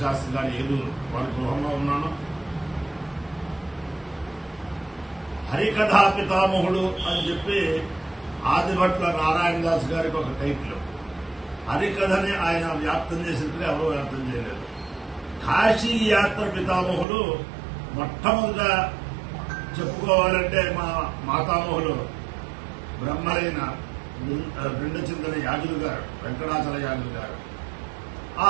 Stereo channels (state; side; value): drops out; left; at 17.1 s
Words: శాస్త్రి గారి ఏలూరు వారి గృహంలో ఉన్నాను. హరికథా పితామహుడు అని చెప్పి ఆదిభట్ల నారాయణ దాస్ గారికి ఒక టైటిల్. హరికథని ఆయన వ్యాప్తం చేసినట్టుగా ఎవరో వ్యాప్తం చేయలేదు. కాశీ యాత్ర పితామహుడు మొట్టమొదట చెప్పుకోవాలంటే మా మాతామహులు బ్రహ్మలైన రెండు చింతన యాజులు గారు, వెంకటాచల యాజులు గారు. ఆ